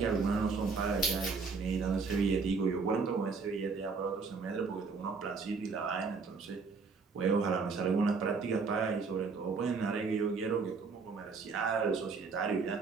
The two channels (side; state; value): left; quieter; 4.7 dB